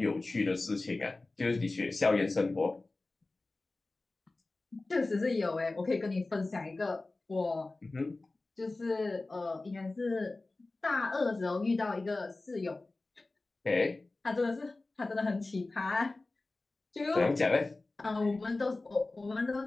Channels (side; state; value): right; quieter; 3.2 dB